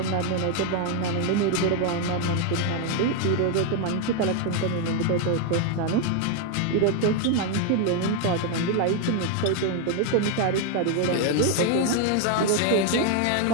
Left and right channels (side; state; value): both; different; correlation 0.01